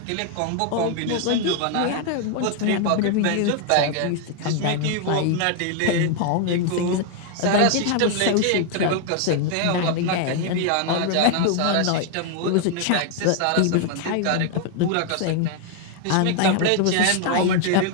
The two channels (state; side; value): different; both; correlation 0.00